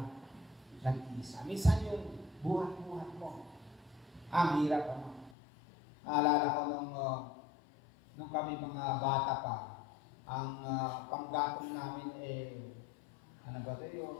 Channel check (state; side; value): drops out; right; at 5.4 s